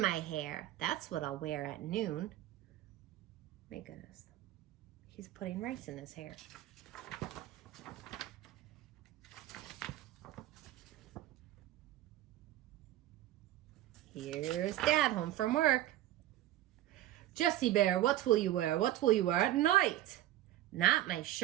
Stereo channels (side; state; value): left; quieter; 13.8 dB